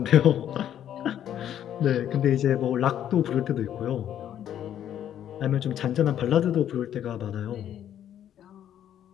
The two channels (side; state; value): right; quieter; 10.5 dB